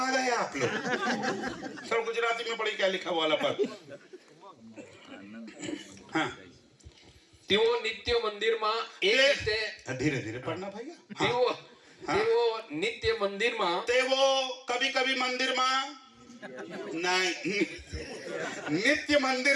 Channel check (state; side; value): identical; both; correlation 1.00